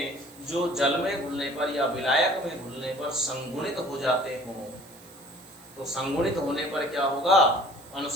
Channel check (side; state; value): right; noise; hiss, 22 dB below the sound